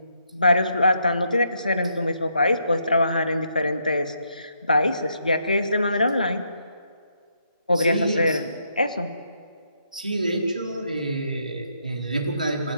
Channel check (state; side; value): inverted; both; correlation -0.76